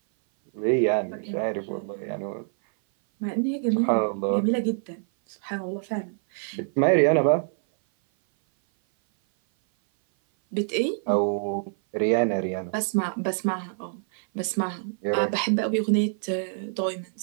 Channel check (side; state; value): left; silent; 57 dB below the other